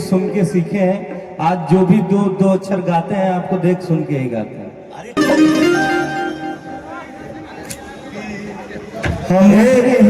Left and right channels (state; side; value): identical; both; correlation 1.00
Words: सुन के सीखे हैं। आज जो भी दो अक्षर गाते हैं आपको देख सुन के ही गाते हैं।